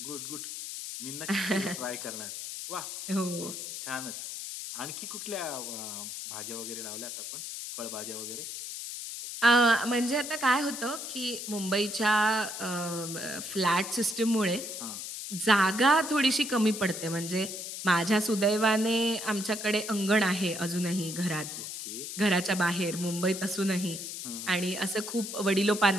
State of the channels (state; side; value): noise; left; hiss, 7 dB below the sound